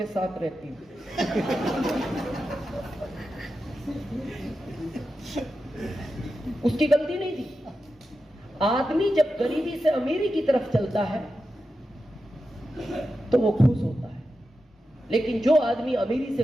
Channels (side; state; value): both; normal; correlation 0.90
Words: साथ रहती हूं। उसकी गलती नहीं थी। आदमी जब गरीबी से अमीरी की तरफ चलता है तो वो खुश होता है, लेकिन जो आदमी अमीरी से